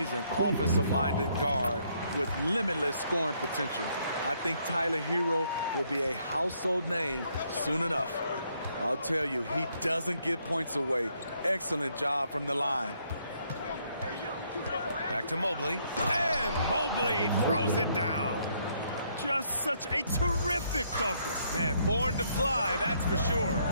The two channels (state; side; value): inverted; both; correlation -0.71